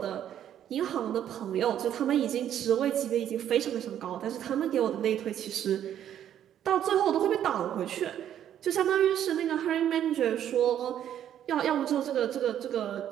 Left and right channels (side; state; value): left; quieter; 10.4 dB